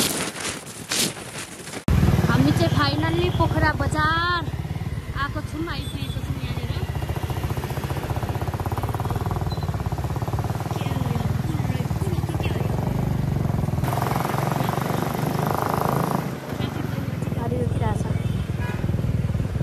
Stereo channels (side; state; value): both; identical; correlation 1.00